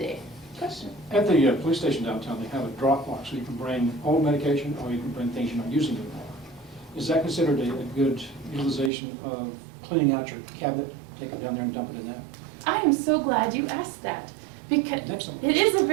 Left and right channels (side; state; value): left; drops out; at 8.9 s